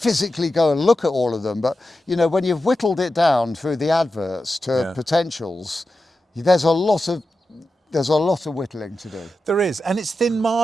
go and look at all of them, but when you've whittled it down through the adverts to potentials, there's a lot of whittling to do. There is, and it's thin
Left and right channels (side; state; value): both; normal; correlation 0.91